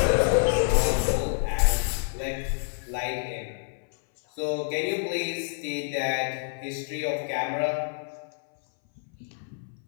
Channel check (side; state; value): right; silent; 60 dB below the other